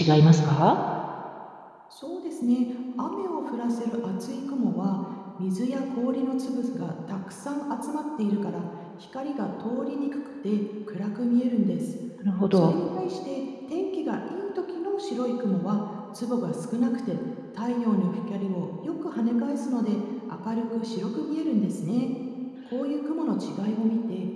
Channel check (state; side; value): identical; both; correlation 1.00